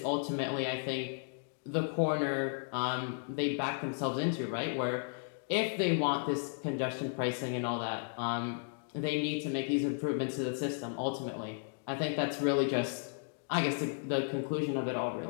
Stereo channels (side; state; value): right; silent; digital silence